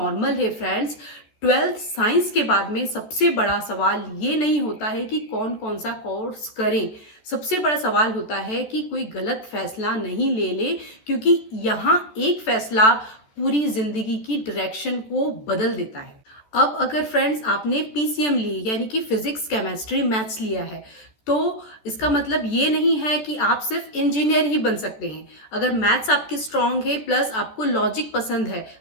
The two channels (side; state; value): right; late; 14 ms